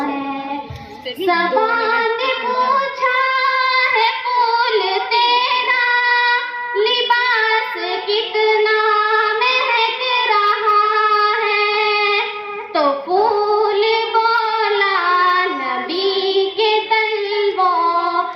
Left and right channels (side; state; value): both; identical; correlation 1.00